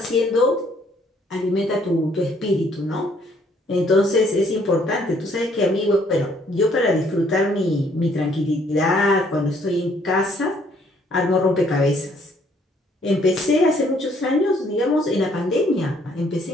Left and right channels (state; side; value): normal; both; correlation 0.65